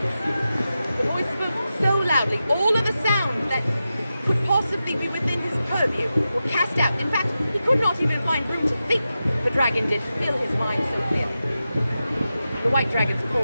The voice spoke so loudly, all of the sounds that could possibly be within his purview were cast out. In fact, he could not even find room to think. The dragon did fill his mind so clearly. The white dragon's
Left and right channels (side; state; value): both; inverted; correlation -0.91